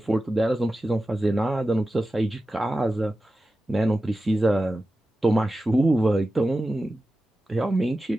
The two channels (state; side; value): normal; both; correlation 0.94